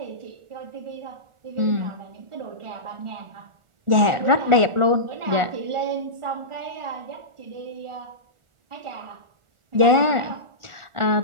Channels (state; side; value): late; left; 1.4 ms